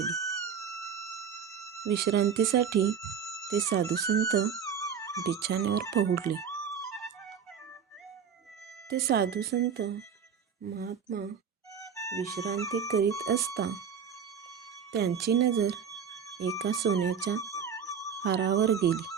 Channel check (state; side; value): quieter; left; 7.2 dB